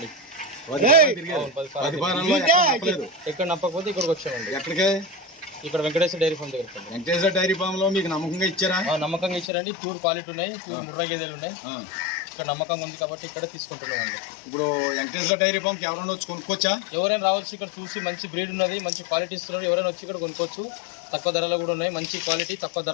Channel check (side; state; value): right; drops out; at 9.5 s